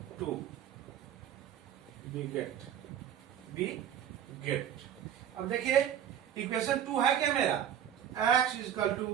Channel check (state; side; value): quieter; left; 9.7 dB